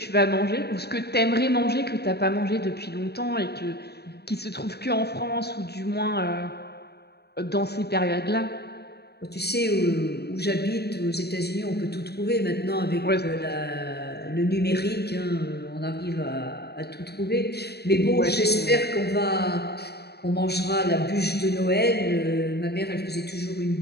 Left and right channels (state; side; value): late; right; 0.47 ms